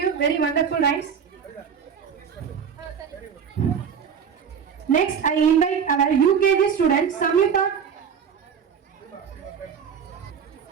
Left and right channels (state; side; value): quieter; left; 7.2 dB